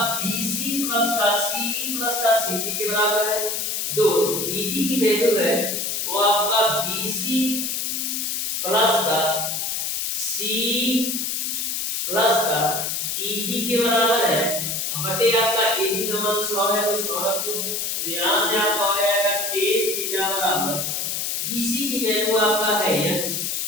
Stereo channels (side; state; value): left; noise; hiss, 1 dB below the sound